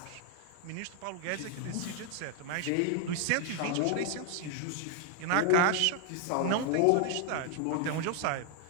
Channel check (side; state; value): both; different; correlation 0.00